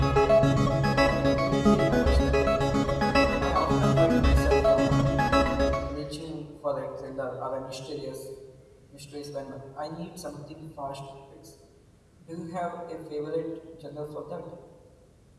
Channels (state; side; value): identical; both; correlation 1.00